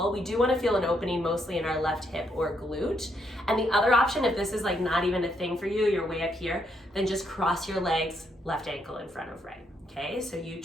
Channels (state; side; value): normal; both; correlation 0.76